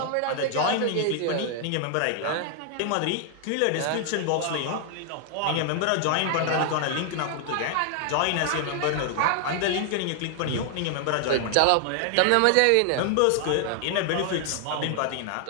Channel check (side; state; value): both; different; correlation 0.00